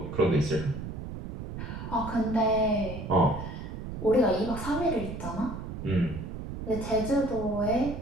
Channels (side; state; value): right; noise; rumble, 8 dB below the sound